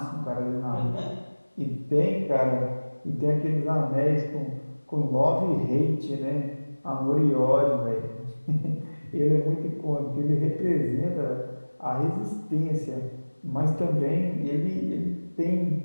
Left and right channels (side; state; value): both; inverted; correlation -1.00